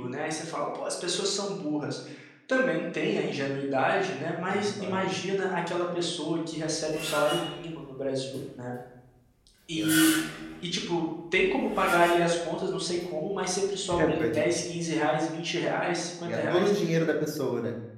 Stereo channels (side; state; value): both; identical; correlation 1.00